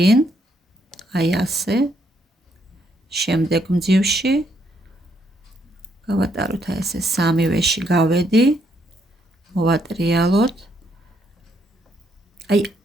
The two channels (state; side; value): normal; both; correlation 0.73